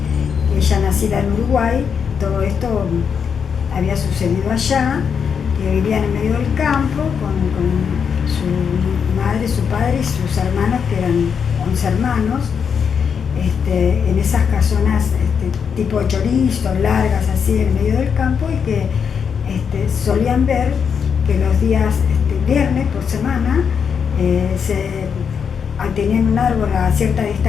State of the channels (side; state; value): right; quieter; 6.8 dB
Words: Ella nacida en Uruguay, todo esto había sucedido allá, que vivían en medio del campo con su madre, su padre y sus hermanos, que eran 11 hermanos, en esas casonas tipo chorizo, largas así en medio del campo, y que solían ver que los días viernes por semana tenían un árbol a cierta